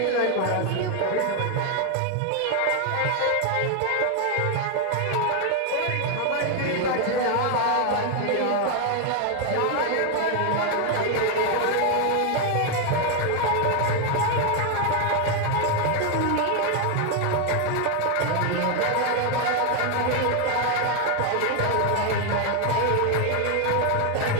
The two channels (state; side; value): different; both; correlation 0.01